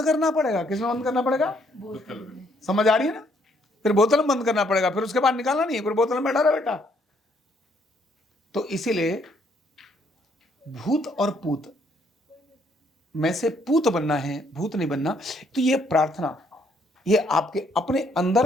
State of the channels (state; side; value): normal; both; correlation 0.69